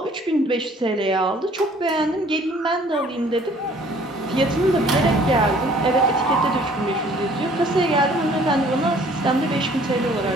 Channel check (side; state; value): both; normal; correlation 0.56